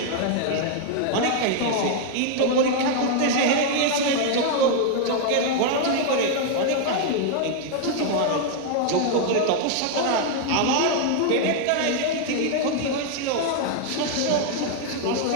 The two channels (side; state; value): both; different; correlation 0.00